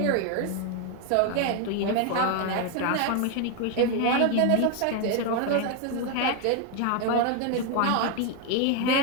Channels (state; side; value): different; both; correlation 0.01